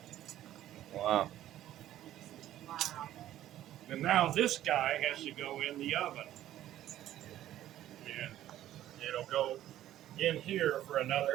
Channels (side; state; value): left; quieter; 12.9 dB